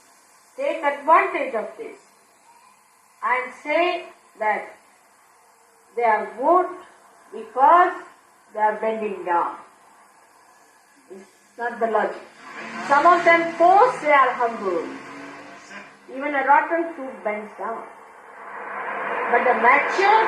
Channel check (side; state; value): both; identical; correlation 1.00